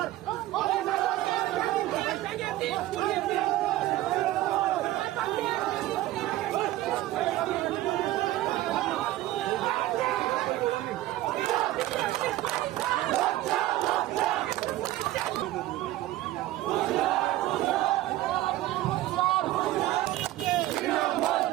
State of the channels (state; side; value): quieter; left; 15.7 dB